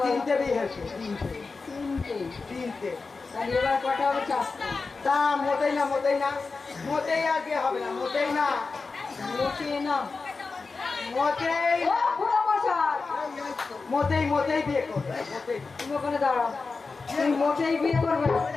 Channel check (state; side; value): quieter; right; 4.2 dB